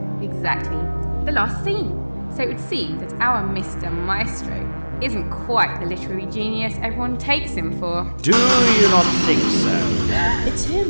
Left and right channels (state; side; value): inverted; both; correlation -1.00